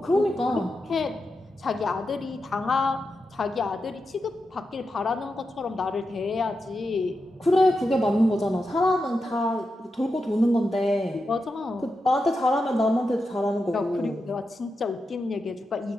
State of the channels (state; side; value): normal; both; correlation 0.88